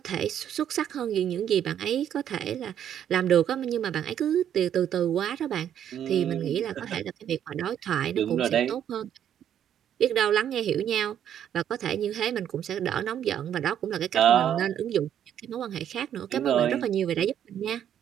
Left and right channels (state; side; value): quieter; left; 9.9 dB